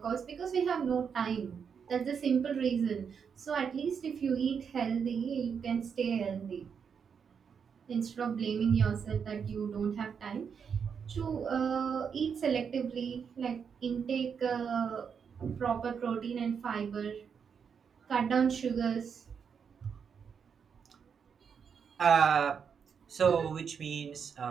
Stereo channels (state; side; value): quieter; left; 6.7 dB